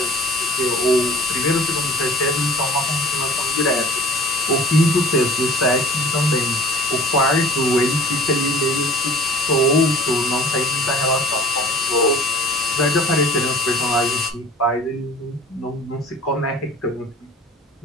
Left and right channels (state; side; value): normal; both; correlation 0.45